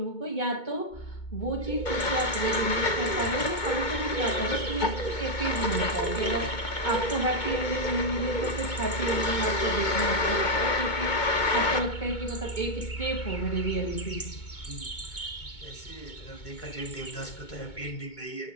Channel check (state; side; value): late; right; 2.2 ms